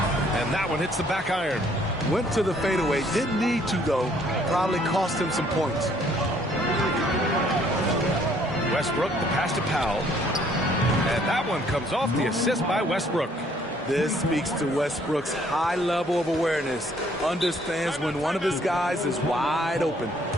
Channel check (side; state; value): both; normal; correlation 0.63